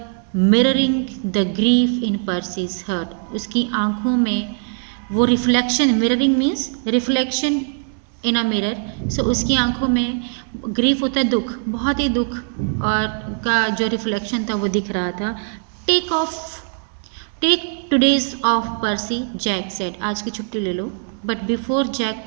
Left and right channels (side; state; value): left; silent; 58 dB below the other